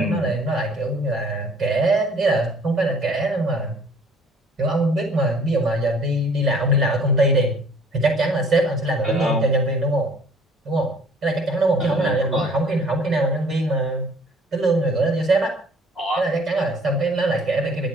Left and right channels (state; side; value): normal; both; correlation 0.55